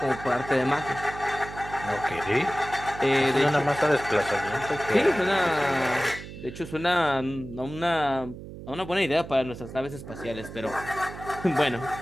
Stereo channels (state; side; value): noise; right; hum, 13 dB below the sound